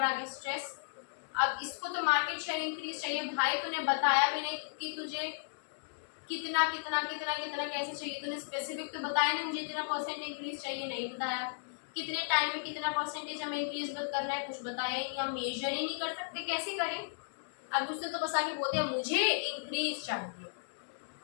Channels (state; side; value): silent; right; digital silence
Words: आगे स्ट्रेस। अब इसको तो मार्केट शेयर इंक्रीज चाहिए, भाई तूने बताया भी नहीं कि तुझे कितना कितना कितना कितना कैसे चाहिए, तूने स्पेसिफिक तो बताया नहीं, मुझे इतना परसेंट इंक्रीज चाहिए, नहीं बताया। कितने टाइम में कितना परसेंटेज हमें इंक्रीज करना है, कुछ बताया ही नहीं, हम मेजर ही नहीं कर सकते, कैसे करें। अब उसने तो बस आके बोल दिया मुझे इंक्रीज चाहिए।